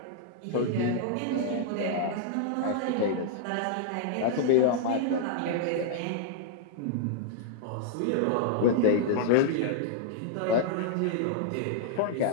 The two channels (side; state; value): both; different; correlation -0.01